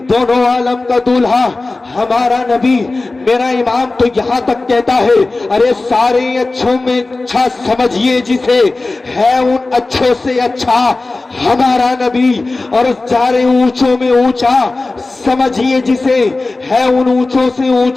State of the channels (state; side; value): quieter; right; 3.3 dB